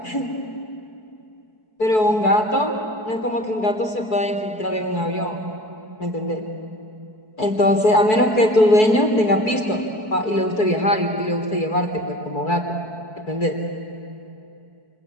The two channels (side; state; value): right; late; 4.6 ms